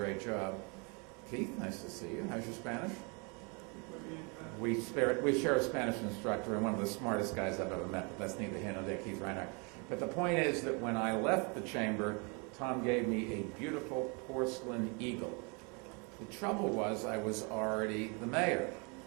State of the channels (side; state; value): left; quieter; 32.9 dB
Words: job. Keith, nice to see you. How's your Spanish? We share a Spanish instructor, and one of the smartest guys I've ever met, but that's neither here nor there, Keith Reinhardt. But the point is that when I left the chamber, Tom gave me a beautiful porcelain eagle. The trouble was I was already the mayor,